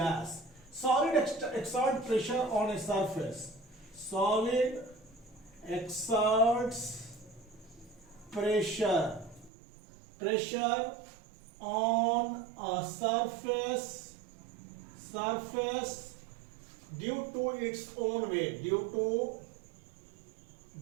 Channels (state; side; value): drops out; left; at 9.5 s